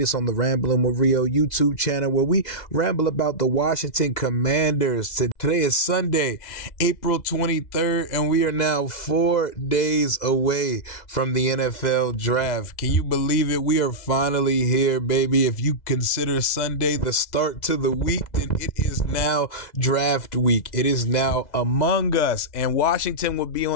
on the Rambling with Rio YouTube channel, where we ramble about the Washington Commanders. Today is Sunday, April 23rd, and we are now 4 days away from the NFL draft. Can you believe it? We are finally here, baby. If you consider Sunday the start to the week, then it is now draft week. It is now among us, and Washington will be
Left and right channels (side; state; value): right; late; 2.0 ms